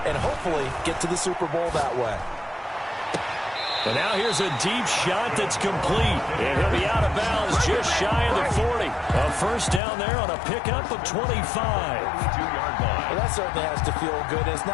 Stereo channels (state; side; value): drops out; right; at 9.8 s